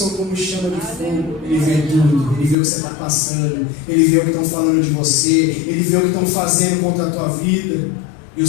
como chama de fogo. Ele vê tudo, ele vê o que você está passando, ele vê o que estão falando de você, ele vê o que estão fazendo contra a tua vida. E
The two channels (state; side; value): drops out; right; at 2.6 s